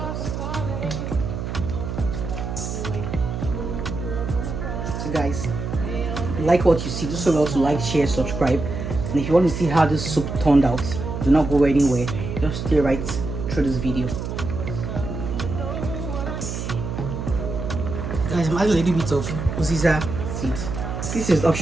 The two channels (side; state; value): right; noise; hum, 5 dB below the sound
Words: So guys, if you like what you see, do so well to like, share, subscribe, and if you want to see how this soup turned out, do not go anywhere, just stay right through this video. Guys, I'm adding a little bit of uziza seed. This is